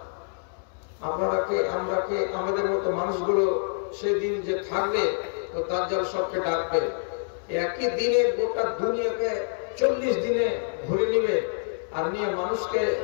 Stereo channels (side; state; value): right; silent; 60 dB below the other